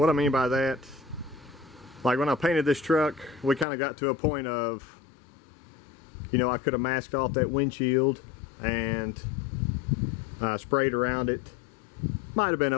I mean by that, like when I painted this truck, we kind of got to a point of, you know, I could have masked off that windshield and sprayed around it. Might have been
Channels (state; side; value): drops out; right; at 3.7 s